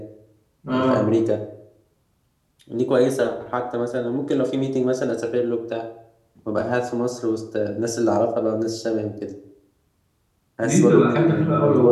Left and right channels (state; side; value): identical; both; correlation 1.00